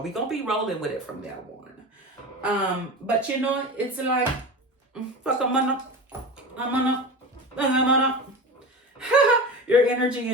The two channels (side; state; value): both; normal; correlation 0.29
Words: We gonna be rolling with it from now on. But you know, it's like, fuck I'm gonna. Your energy